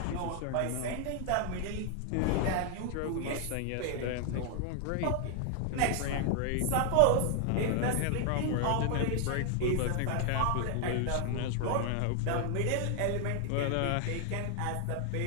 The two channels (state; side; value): different; both; correlation 0.00